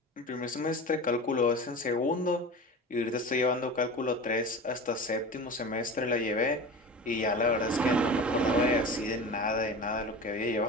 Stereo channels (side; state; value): both; normal; correlation 0.32